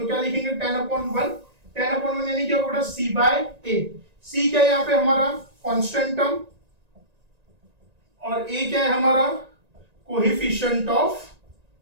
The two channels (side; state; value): left; late; 1.9 ms